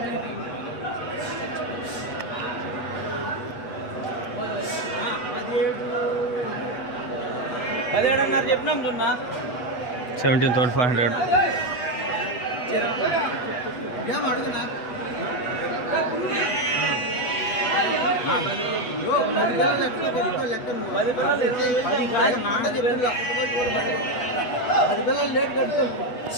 17 అన్నారు చెప్పినాం చూన్నా 17,500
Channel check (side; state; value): right; late; 8.1 ms